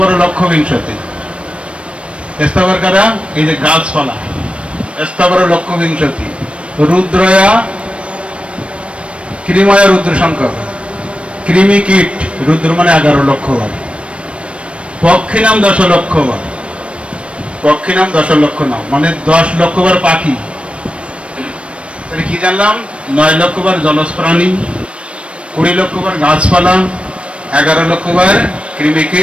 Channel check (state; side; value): late; left; 0.060 ms